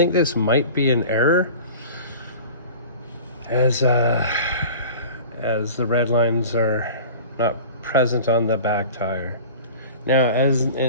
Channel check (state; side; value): inverted; both; correlation -0.39